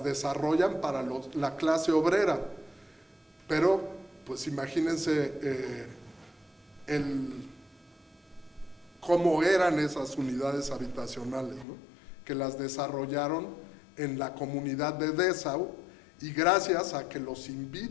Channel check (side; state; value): right; drops out; at 11.7 s